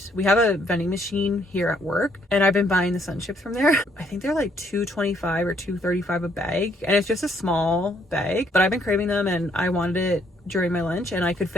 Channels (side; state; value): both; normal; correlation 0.68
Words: we have a vending machine here at work, and I've been buying the sun chips from there. I think they're like $2.25 or $2.35 a bag, and it's just a small bag, but I've been craving them and I wanted it during my lunch and I could